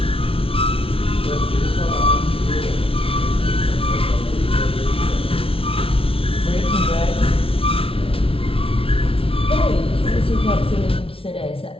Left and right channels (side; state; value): right; late; 0.26 ms